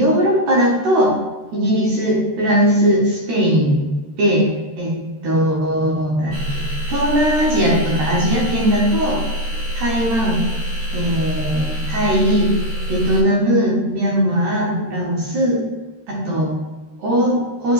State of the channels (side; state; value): left; late; 13 ms